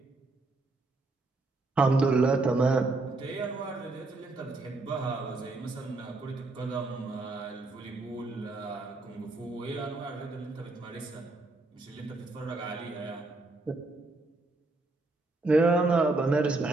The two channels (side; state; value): left; quieter; 3.2 dB